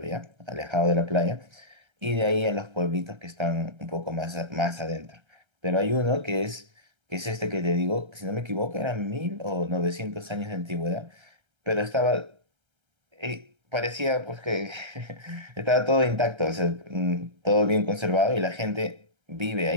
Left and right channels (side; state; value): left; late; 1.3 ms